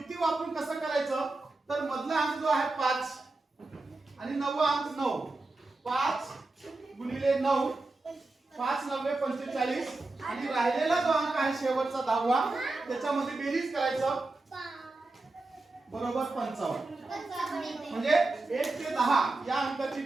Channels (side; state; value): left; quieter; 3.2 dB